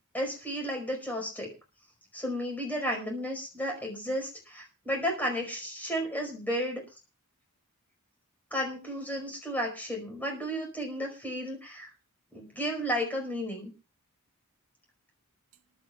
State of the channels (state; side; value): normal; both; correlation 0.40